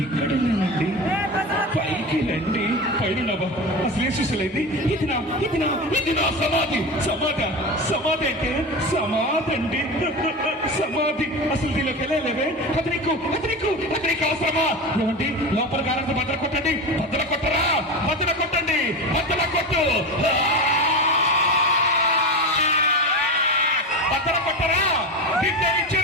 ఇక్కడ లేనండి, పైకి రండి. పైన అసలు ఏం సుశీలైంది? ఇది నా సమాధి. సమాధి అంటే సమాధి అండి, సమాధి. అసలు దీనిలోకి వెళ్ళలేవే. అతనికి అవసరమా? ఏమండి, లోపల గారంతో బద్దలు కొట్టండి. బద్దలు కొట్టరా? బద్దలు కొట్టండి, బద్దలు కొట్టు. బద్దల కొట్టరా? విద్య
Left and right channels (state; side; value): normal; both; correlation 0.24